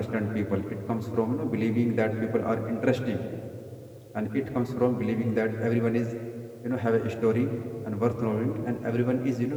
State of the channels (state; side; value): identical; both; correlation 1.00